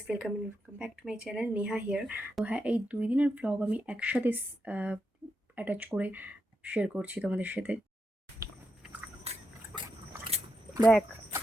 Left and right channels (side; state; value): both; normal; correlation 0.84